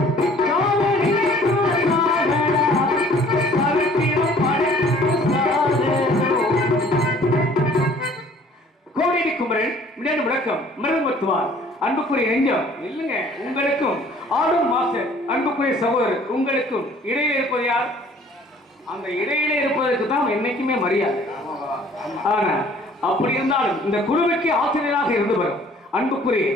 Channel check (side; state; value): both; normal; correlation 0.54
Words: சாக நினைத்தால் சாகடா, சரித்திரம் படைத்திட்டு சாகணும். கோடி குமரன் மின்னணு முழக்கம் மிருகமத்துவார் அன்புக்குரிய நெஞ்சம் இல்லைங்க. உங்களுக்கும் ஆடும் மாஸ்டர் அன்புக்குரிய சகோதரர் உங்களுக்கும் இடையில இருப்பது யார்? அந்த இடையில இருப்பதற்கு தான் என்னைக்குமே மரியாதை. ஆனா அப்படி இருந்தாலும் இந்த குழுவுக்கு ஆசிரியராக இருந்து வரும் அன்புக்குரிய